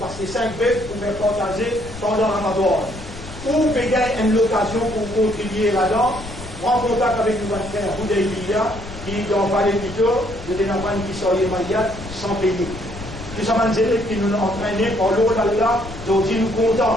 5 bêtes pour faire partager pendant Ramadan. Ou payer une occasion pour contribuer là-dedans, en contact avec le frère Boudaïlia, qui dans Palais Pito, de Dénapan qui sont les Mayat sans payer. Tout ça, qui nous ont entraînés par l'eau d'Allah, aujourd'hui nous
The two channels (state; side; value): noise; left; rumble, 14 dB below the sound